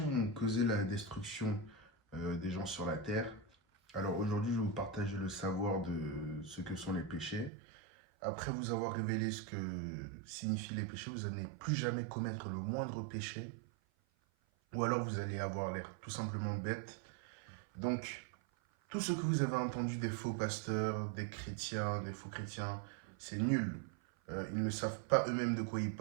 ont causé la destruction des gens sur la terre. Alors aujourd'hui je vais vous partager le savoir de ce que sont les péchés. Après vous avoir révélé ce que signifient les péchés, vous n'allez plus jamais commettre le moindre péché. Ou alors vous allez avoir l'air tout simplement bête. Donc, tout ce que vous avez entendu des faux pasteurs, des chrétiens, des faux chrétiens, c'est nul. Ils ne savent pas eux-mêmes de quoi ils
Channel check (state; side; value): drops out; left; at 7.5 s